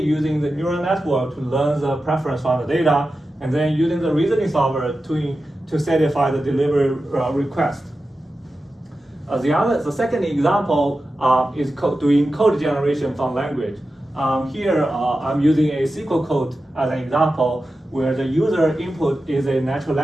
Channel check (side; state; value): both; normal; correlation 0.92